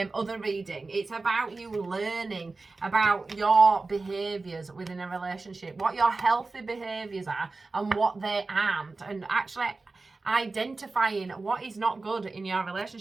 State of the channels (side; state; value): left; quieter; 3.6 dB